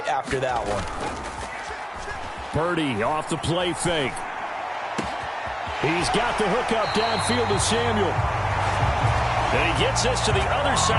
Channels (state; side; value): identical; both; correlation 1.00